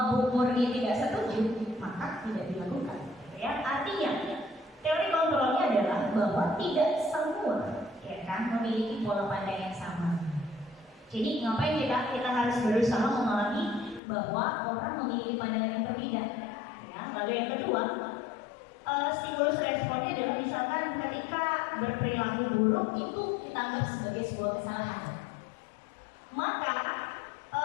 Bu Murni tidak setuju, maka tidak dilakukan. Ya, artinya teori kontrolnya adalah bahwa tidak semua memiliki pola pandang yang sama. Jadi ngapain kita harus berusaha memahami bahwa orang memiliki pandangan yang berbeda. Ya, lalu yang kedua, stimulus responnya adalah misalkan ketika berperilaku buruk itu kita anggap sebagai sebuah kesalahan. Maka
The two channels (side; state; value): right; drops out; at 14.0 s